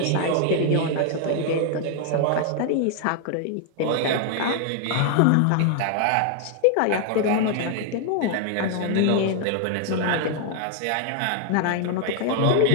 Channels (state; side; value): different; both; correlation 0.00